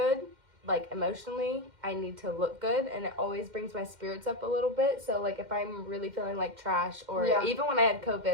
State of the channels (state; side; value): late; left; 2.1 ms